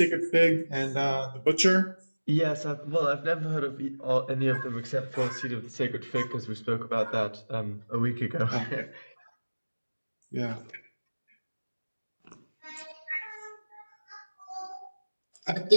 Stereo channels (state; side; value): inverted; both; correlation -1.00